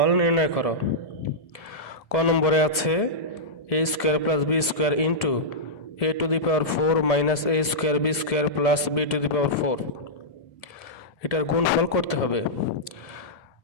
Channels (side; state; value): right; late; 2.0 ms